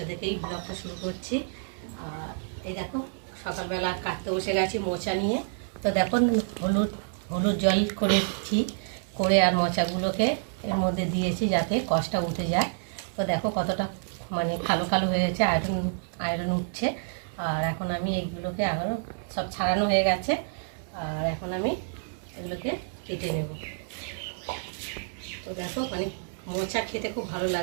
থেকেই ব্লগটা শুরু করছি। আর এই দেখো, সকালবেলা কাটতে বসে গেছি মোচা নিয়ে। তো দেখো, হলুদ জল করেছি, করে আর মোচাগুলোকে এর মধ্যে দিয়েছি যাতে কষটা উঠে যায়। তো দেখো কতটা মানে কালো কালো হয়েছে, আয়রন উঠছে। আর এখন আমি এইগুলোকে আরও সব ছাড়ানো হয়ে গেছে। আর এখন আমি এগুলোকে কেটে নেব। তো দেখো মানে মোচা খেতে খুব ভালো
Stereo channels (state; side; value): silent; left; digital silence